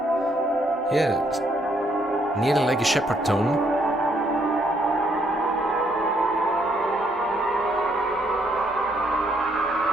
Yeah, nearly like a shepherd tone.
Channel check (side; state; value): both; normal; correlation 0.71